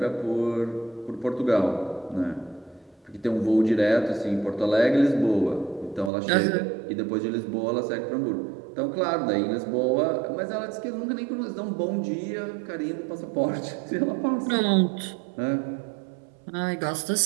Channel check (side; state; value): left; drops out; at 6.1 s